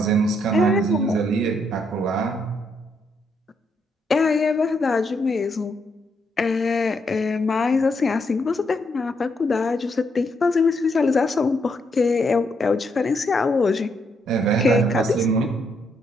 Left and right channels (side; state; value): both; normal; correlation 0.76